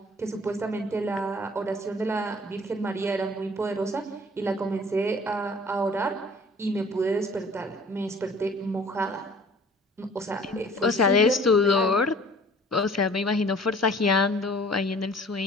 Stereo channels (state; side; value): normal; both; correlation 0.50